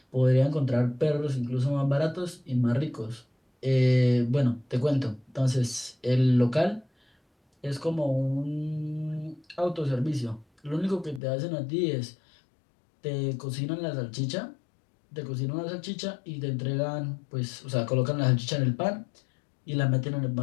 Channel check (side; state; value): right; drops out; at 11.2 s